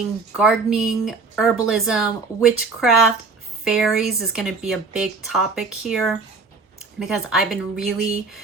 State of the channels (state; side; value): quieter; left; 4.3 dB